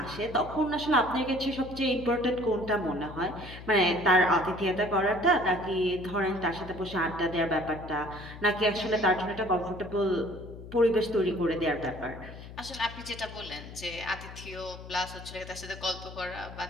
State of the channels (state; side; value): noise; left; hum, 14 dB below the sound